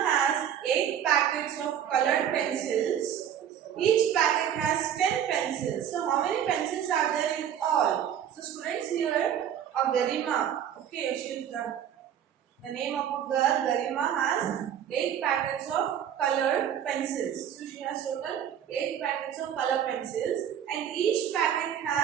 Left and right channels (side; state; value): left; quieter; 9.5 dB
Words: 8 packets of colored pencils. Each packet has 10 pencils. So how many pencils are there in all? So students, here of Garima, okay, she is the name of a girl. Garima has 8 packets of colored pencils. So she has total 8 packets of color pencils and each packet